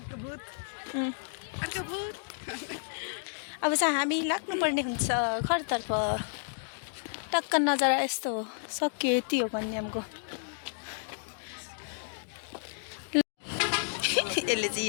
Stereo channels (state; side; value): silent; right; digital silence